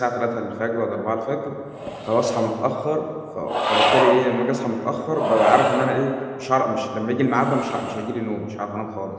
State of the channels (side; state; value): both; identical; correlation 1.00